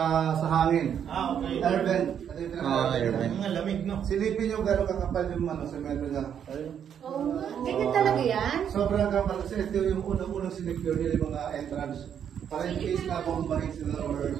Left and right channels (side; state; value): left; quieter; 8.6 dB